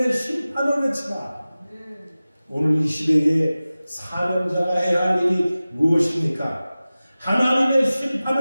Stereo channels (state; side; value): inverted; both; correlation -0.97